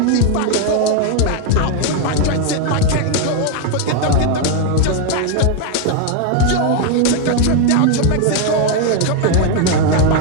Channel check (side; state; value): both; different; correlation 0.01